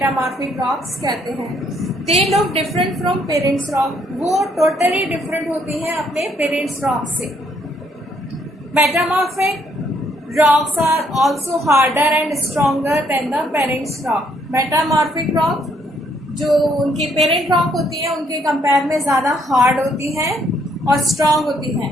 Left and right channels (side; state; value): both; normal; correlation 0.69